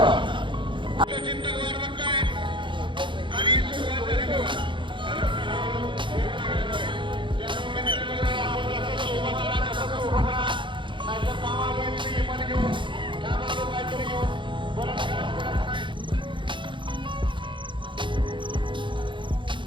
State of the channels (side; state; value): left; late; 0.23 ms